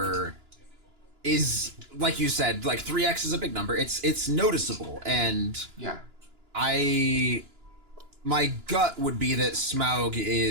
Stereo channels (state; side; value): late; left; 2.9 ms